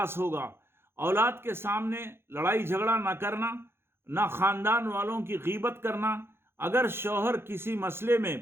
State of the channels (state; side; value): late; left; 0.11 ms